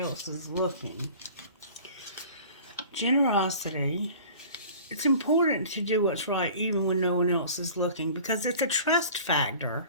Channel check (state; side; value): inverted; both; correlation -0.44